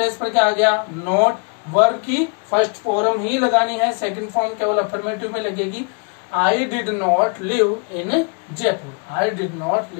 पर क्या आ गया? नॉट, वर्ब की फर्स्ट फॉर्म ही लगानी है, सेकंड फॉर्म केवल अफर्मेटिव में लगेगी। I did not live in Jaipur, I did not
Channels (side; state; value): right; quieter; 36.1 dB